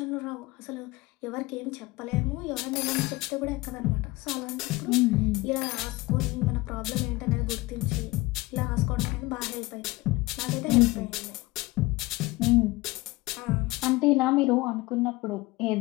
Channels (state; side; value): quieter; right; 21.3 dB